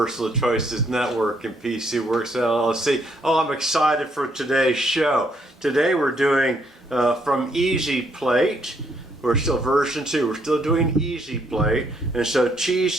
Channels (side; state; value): both; normal; correlation 0.71